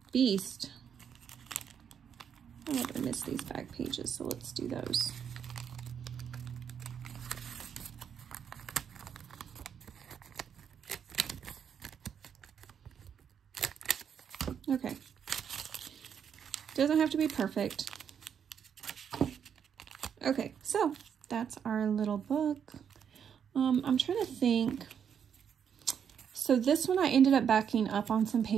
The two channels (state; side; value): quieter; left; 7.9 dB